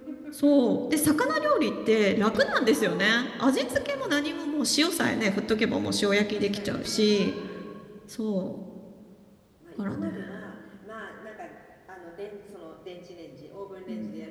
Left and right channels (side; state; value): both; identical; correlation 1.00